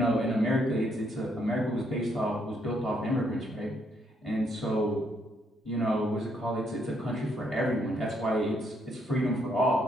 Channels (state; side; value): normal; both; correlation 0.73